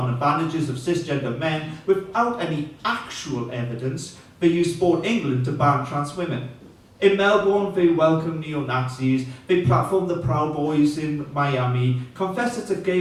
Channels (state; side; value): identical; both; correlation 1.00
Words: advantages of cisgender men without any actual evidence, they use Sport England to ban trans women. In Melbourne, they welcome neo-Nazis, they platform the Proud Boys in Miami, confess it's a